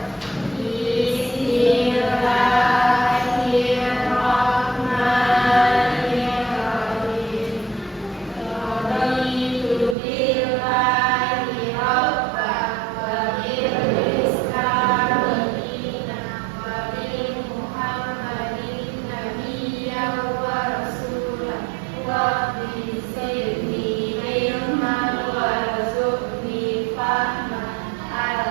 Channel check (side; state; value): left; drops out; at 10.0 s